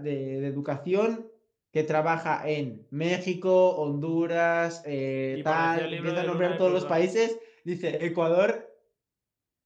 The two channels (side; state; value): both; identical; correlation 1.00